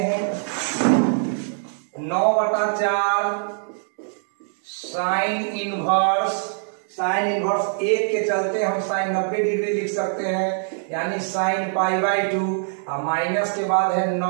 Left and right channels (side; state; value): left; silent; digital silence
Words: 9/4 साइन इनवर्स, साइन इनवर्स 1 के चलते हम साइन 90 डिग्री लिख सकते हैं, यानी साइन π/2। और माइनस के बाद है